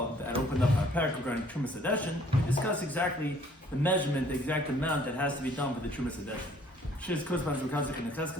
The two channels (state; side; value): normal; both; correlation 0.59